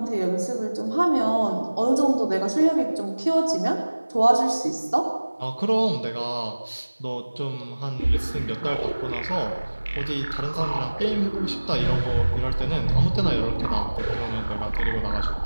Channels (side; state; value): both; inverted; correlation -1.00